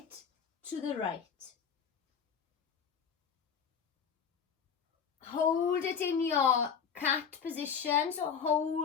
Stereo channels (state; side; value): quieter; right; 6.9 dB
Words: to the right. Hold it in your cat position. So